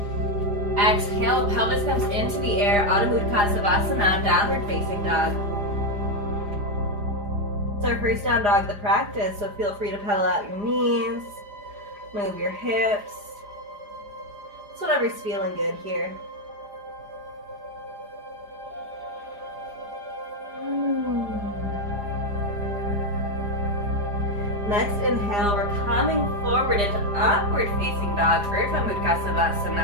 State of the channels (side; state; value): left; late; 4.9 ms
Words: Exhale, pelvis comes into the air, Adho Mukha Savasana, downward facing dog. It's our first down dog of the practice, so feel free to pedal out your knees, move your hips. It's whatever's feeling good here. Next inhale, we're coming forward into upward facing dog, Urdhva Mukha